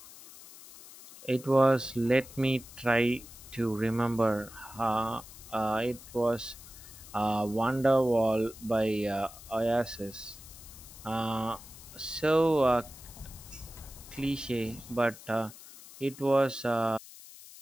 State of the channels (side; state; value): left; noise; hiss, 18 dB below the sound